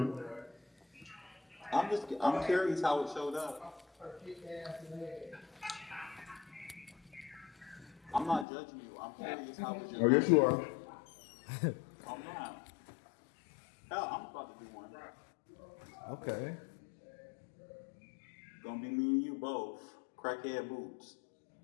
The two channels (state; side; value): drops out; right; at 8.5 s